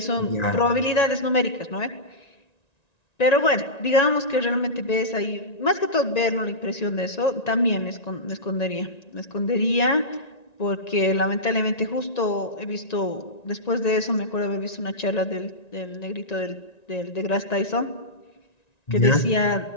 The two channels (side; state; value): right; late; 1.9 ms